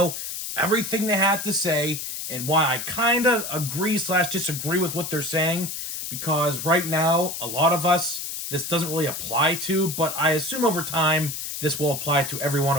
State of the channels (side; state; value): left; noise; hiss, 6 dB below the sound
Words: everything they had to say and why I kind of agree slash disagree with what they're saying, because right now a lot of us this doesn't really apply to, but I assume over time this will apply to every one